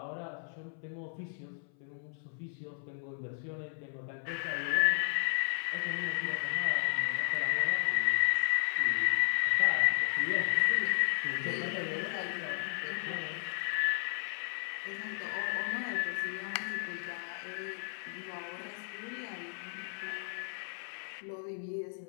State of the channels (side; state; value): right; silent; 55 dB below the other